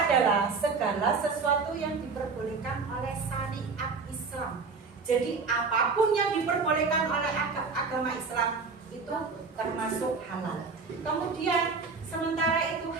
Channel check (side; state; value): left; quieter; 4.6 dB